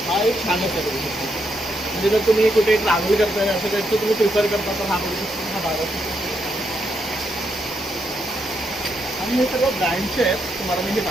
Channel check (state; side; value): normal; both; correlation 0.79